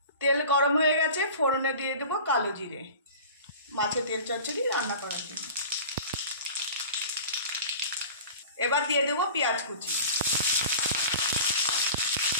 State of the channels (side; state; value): both; inverted; correlation -0.39